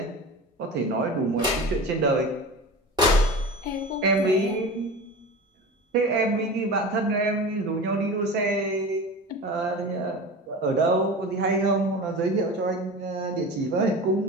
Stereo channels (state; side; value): normal; both; correlation 0.32